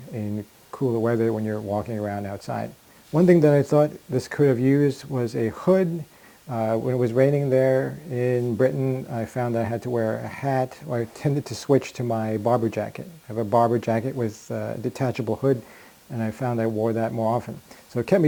in cooler weather when you're walking around outside. One thing that I thought this could have used was a hood. When it was raining there in Britain, I found I had to wear a hat, or I tended to switch to my barber jacket. I have a barber jacket with a detachable hood, and I found I wore that more often. So it kept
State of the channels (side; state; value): both; identical; correlation 1.00